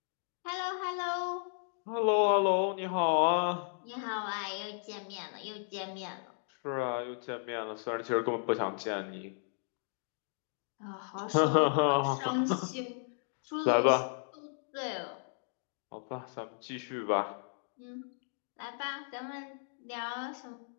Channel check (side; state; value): right; silent; digital silence